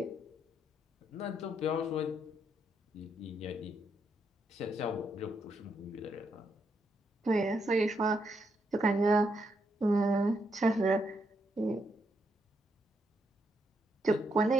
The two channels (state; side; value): normal; both; correlation 0.78